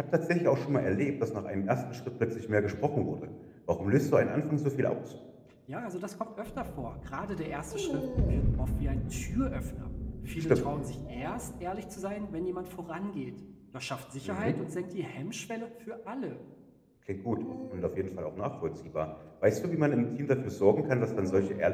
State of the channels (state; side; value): identical; both; correlation 1.00